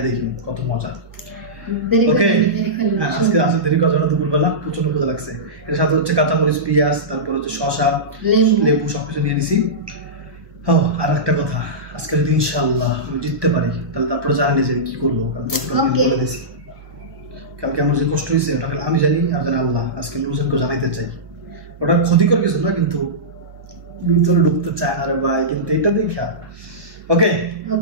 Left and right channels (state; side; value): late; left; 1.2 ms